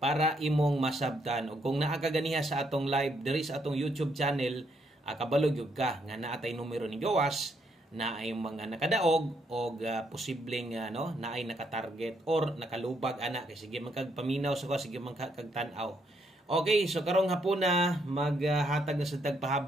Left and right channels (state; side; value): normal; both; correlation 0.74